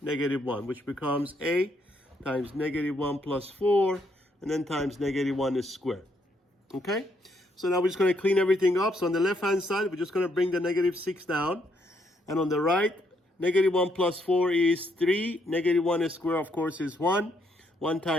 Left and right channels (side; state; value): both; normal; correlation 0.73